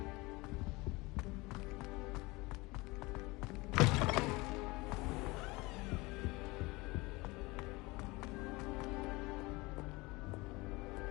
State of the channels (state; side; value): quieter; right; 23.3 dB